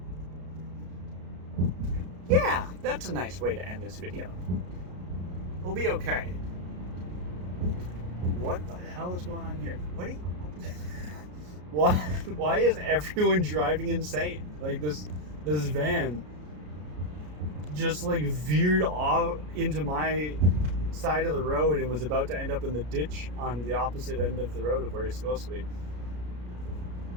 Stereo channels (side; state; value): left; late; 33 ms